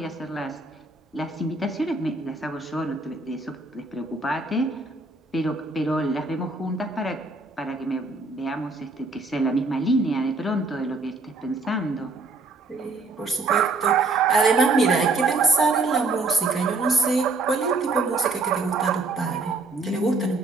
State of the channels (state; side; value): quieter; left; 3.5 dB